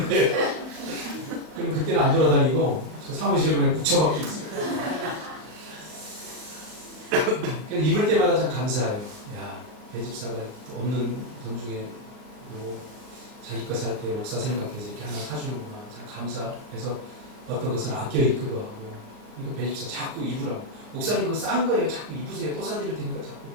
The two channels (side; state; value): left; late; 38 ms